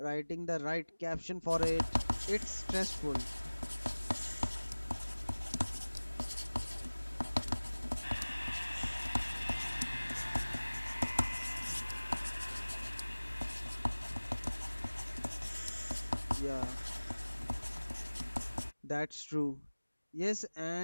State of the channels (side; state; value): both; inverted; correlation -1.00